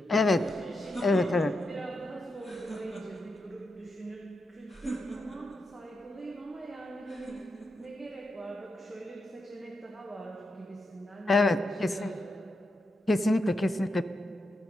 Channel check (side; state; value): both; normal; correlation 0.85